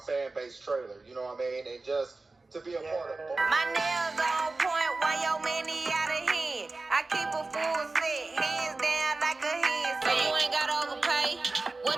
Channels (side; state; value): left; quieter; 3.5 dB